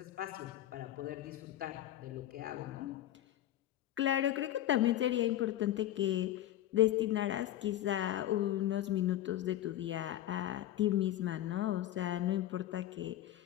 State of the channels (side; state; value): right; quieter; 13.1 dB